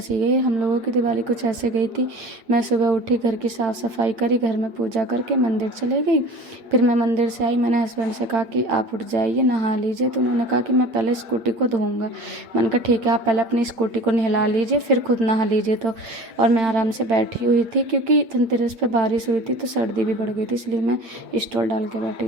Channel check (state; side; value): late; left; 8.6 ms